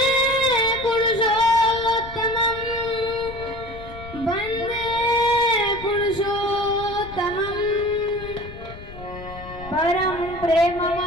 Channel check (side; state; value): left; noise; rumble, 15 dB below the sound